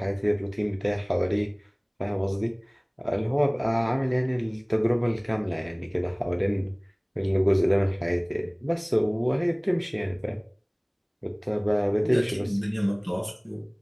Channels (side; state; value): both; identical; correlation 1.00